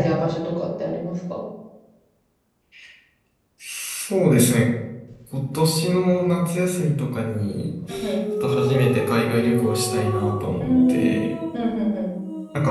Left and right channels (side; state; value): both; identical; correlation 1.00